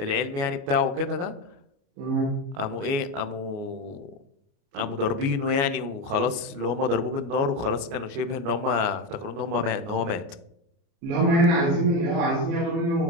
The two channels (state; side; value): late; left; 29 ms